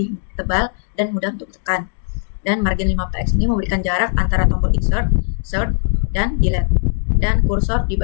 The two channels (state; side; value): silent; right; digital silence